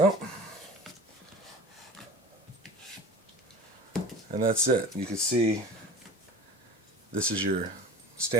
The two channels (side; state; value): both; normal; correlation 0.38